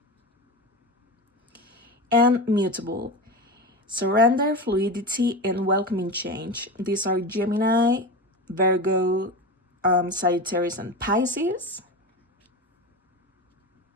And Mutable, Surrender, Fluidity, and Welcoming Change. These are Gemini, Virgo, Sagittarius, and Pisces.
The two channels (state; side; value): normal; both; correlation 0.24